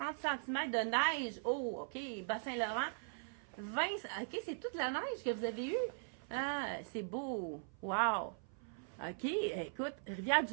cm de neige. Oh, OK, Bas-Saint-Laurent. 20, OK, c'est toute la neige que vous avez eue. Ah, c'est beau. Wow. OK, écoute,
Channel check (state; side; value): silent; left; 51 dB below the other